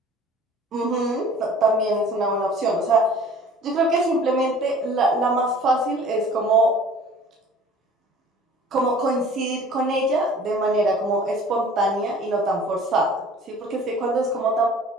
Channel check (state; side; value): normal; both; correlation 0.48